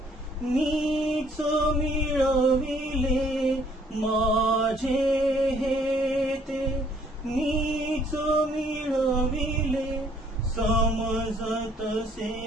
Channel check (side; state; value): both; normal; correlation 0.62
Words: मीच मिळविले, माझे हे ते मीच मिळविले, समजतसे